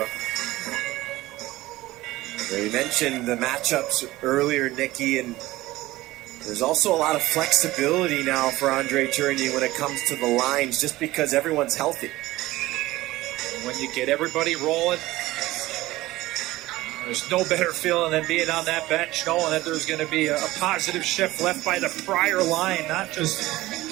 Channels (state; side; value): quieter; left; 17.9 dB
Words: We mentioned the matchups earlier, Nicky, and there's also a lot of flexibility now for Andre Tourigny when it comes to the lines, just because everyone's healthy. When you get everybody rolling, There's no better feeling than being on that bench, knowing that there's going to be a positive shift left by the prior line, not just